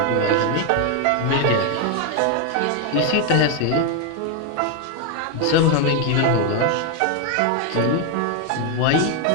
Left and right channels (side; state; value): both; different; correlation 0.01